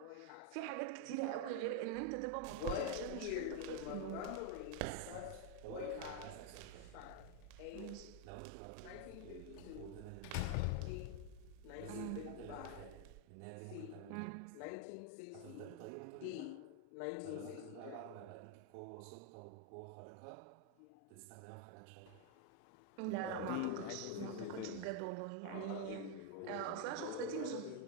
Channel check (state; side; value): different; both; correlation 0.01